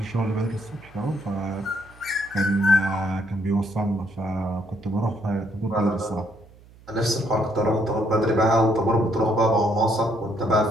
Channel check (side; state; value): right; noise; hum, 24 dB below the sound